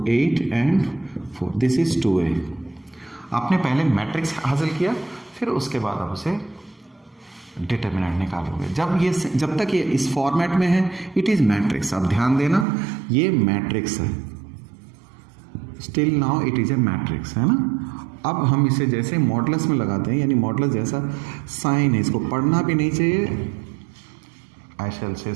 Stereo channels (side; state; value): left; drops out; at 12.7 s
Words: 8 एंड 4, दिस इज 2a। आपने पहले मैट्रिक्स हासिल किया, फिर उसके बाद आप उसे डिटर्मिनेंट निकालोगे। जब तक ये इस फॉर्मेट में है इट इज मैट्रिक्स। आप ध्यान देना, ये मैट्रिक्स है, still now it is a matrix, है ना। अब हम इसे जैसे मॉडुलस में लगाते हैं, यानी मॉडुलस जैसा साइन है, इसको पढ़ना भी नहीं चाहिए, आई शैल से